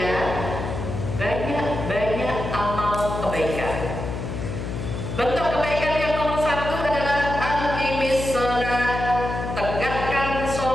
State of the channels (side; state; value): left; noise; hum, 5 dB below the sound